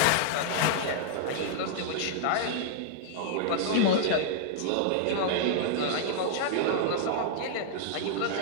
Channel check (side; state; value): both; different; correlation -0.01